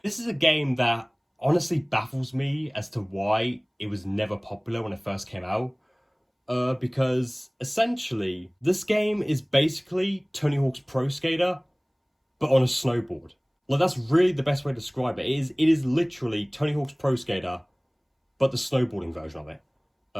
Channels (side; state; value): both; identical; correlation 1.00